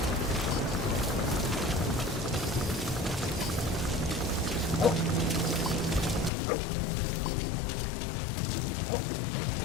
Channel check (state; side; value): drops out; right; at 6.3 s